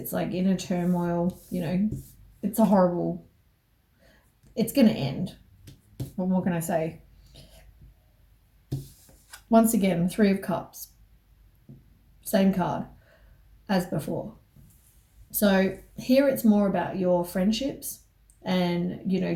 like inner turmoil. It's a horrible... It's going to end. What more can I say? Once again, Three of Cups. Same card as before. So here it's more about your friendships and,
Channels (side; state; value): both; identical; correlation 1.00